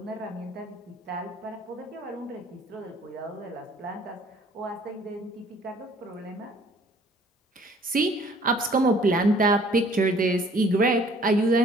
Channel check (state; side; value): normal; both; correlation 0.57